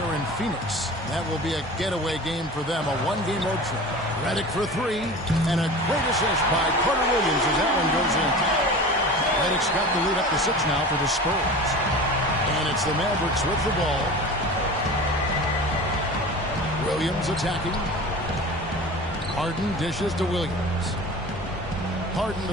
in Phoenix. That will be a getaway game for them, a one-game road trip. Redick for three, and a great assist by Carter Williams as that one goes in. Redick's got the lead up to 6 now for the Spurs. And it's the Mavericks with the ball. Williams attacking. Harden dishes to Williams. Harden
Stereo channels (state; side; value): normal; both; correlation 0.35